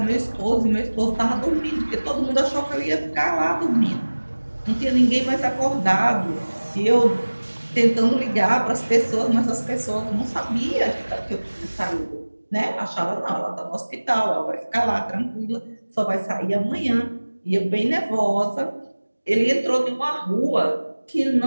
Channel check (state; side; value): inverted; both; correlation -1.00